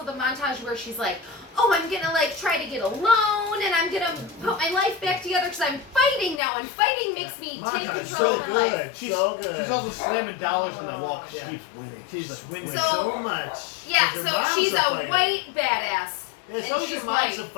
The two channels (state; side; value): drops out; right; at 6.4 s